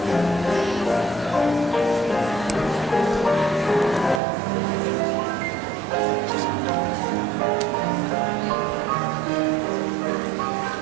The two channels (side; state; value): left; drops out; at 4.2 s